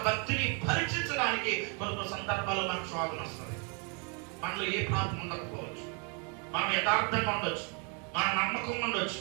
భక్తిని పరీక్షించడానికి కొన్ని సందర్భాల్లో మనకు శోధన వస్తుంది. మనలో ఏ పాపం ఉండకపోవచ్చు, మనం యథార్థంగా ఉండొచ్చు, మన నమ్మకం ఉండొచ్చు,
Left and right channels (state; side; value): quieter; left; 34.9 dB